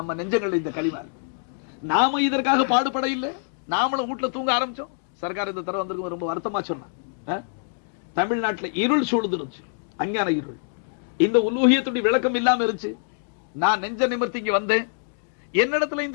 நெஞ்சங்கள் இந்த களிமா. நாம இதற்காக பாடுபட இல்லை, நாமளும் வீட்டுல தூங்க ஆரம்பிச்சோம். சர்க்கார் இந்த தடவை வந்திருக்கும், ரொம்ப வருத்தமா சொன்னான். தமிழ்நாட்டுல இருள் சூழ்ந்துருச்சு, அஞ்ஞான இருள். இந்த உலூஹியத்துடைய விளக்கம் இல்லாம இருந்துச்சு. நான் நெஞ்ச நிமிர்த்தி இங்க வந்தேன், என்னிடத்துல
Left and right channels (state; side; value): silent; right; digital silence